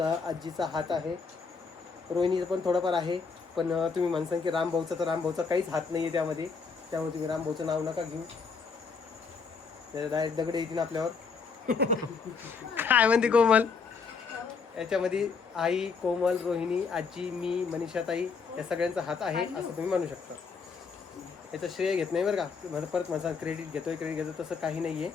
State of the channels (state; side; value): quieter; right; 5.2 dB